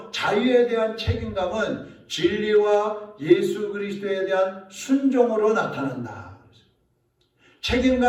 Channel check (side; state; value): both; identical; correlation 1.00